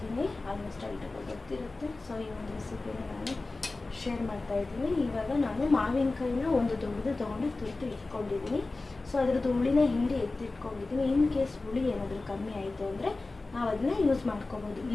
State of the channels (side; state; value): right; quieter; 3.4 dB